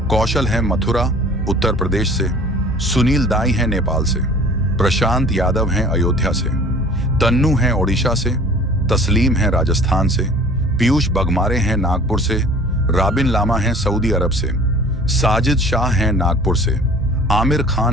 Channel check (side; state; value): both; normal; correlation 0.47